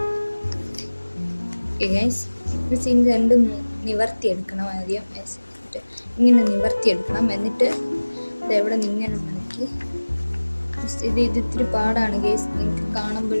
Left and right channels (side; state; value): both; inverted; correlation -1.00